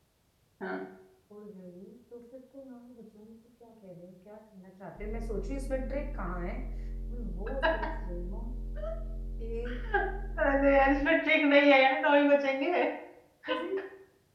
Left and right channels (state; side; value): identical; both; correlation 1.00